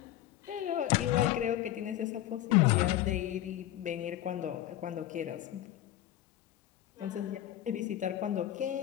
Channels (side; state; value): right; quieter; 13.2 dB